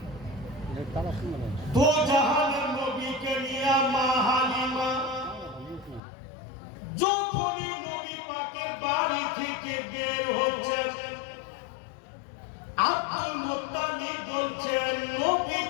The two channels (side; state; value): right; drops out; at 6.0 s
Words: দো জাহানের নবীকে নিয়ে মা হালিমা যখনই নবী পাকের বাড়ি থেকে বের হচ্ছেন, আব্দুল মুত্তালিব বলছেন নবী